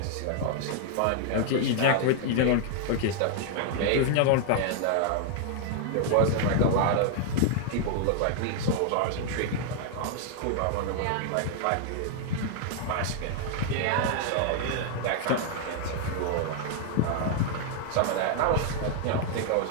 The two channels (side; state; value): both; different; correlation 0.00